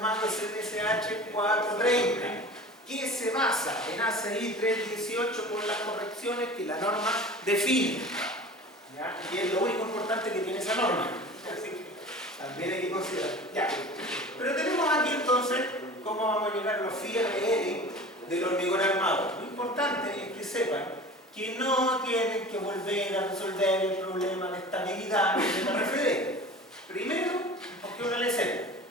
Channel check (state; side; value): normal; both; correlation 0.38